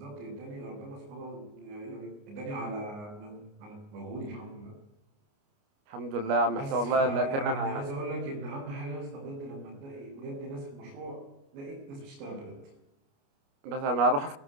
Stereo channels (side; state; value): left; late; 29 ms